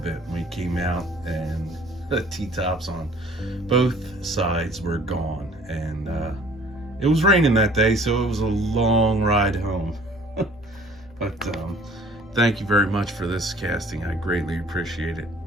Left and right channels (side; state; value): both; normal; correlation 0.52